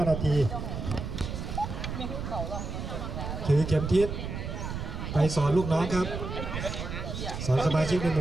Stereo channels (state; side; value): noise; right; rumble, 5 dB below the sound